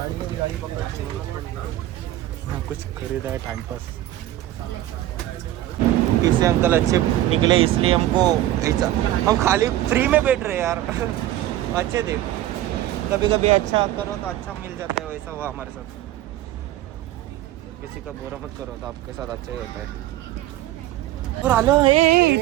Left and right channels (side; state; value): left; quieter; 14.2 dB